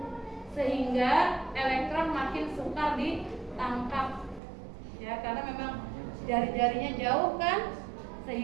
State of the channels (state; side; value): drops out; left; at 4.4 s